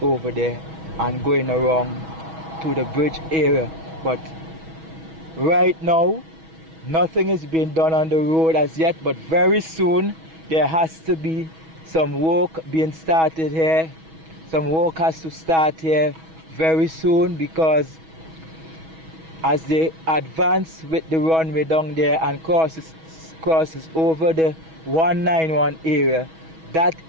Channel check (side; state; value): left; late; 6.2 ms